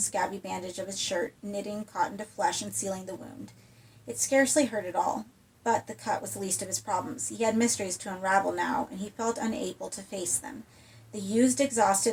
bandage of his shirt, knitting cotton to flesh and sealing the wound. It scarcely hurt at all, but the cut was the least of his problems. He had mysteries to unravel now, and he felt unable to face them. The used,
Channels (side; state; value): both; identical; correlation 1.00